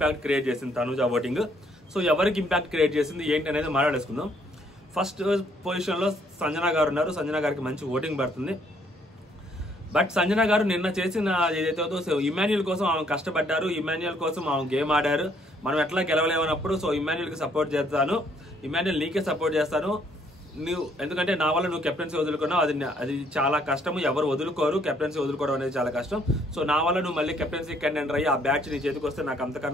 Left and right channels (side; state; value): both; normal; correlation 0.66